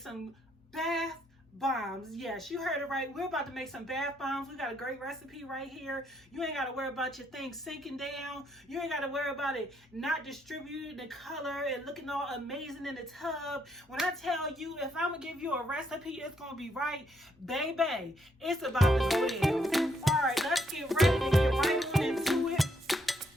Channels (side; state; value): both; normal; correlation 0.73